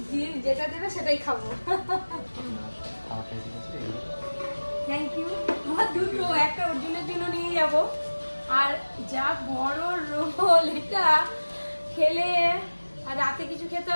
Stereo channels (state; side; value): inverted; both; correlation -1.00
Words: যেটা দেবে সেটাই খাবো। Thank you. আমার দুটো, একটা অর্জুনের জন্য নিয়ে যাব, আর যা বড় রোল, এটা খেলে আর রাতে কিছু খেতে